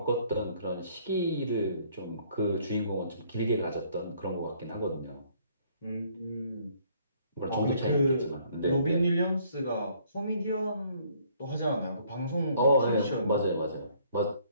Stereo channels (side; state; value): both; inverted; correlation -0.63